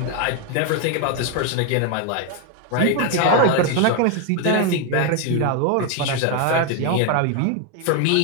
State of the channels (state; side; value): different; both; correlation 0.01